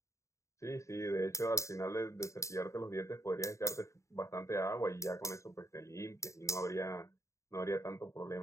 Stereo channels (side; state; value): right; late; 0.15 ms